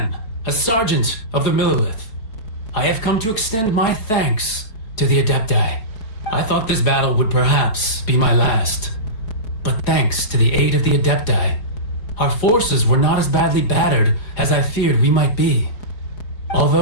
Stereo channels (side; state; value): right; late; 4.7 ms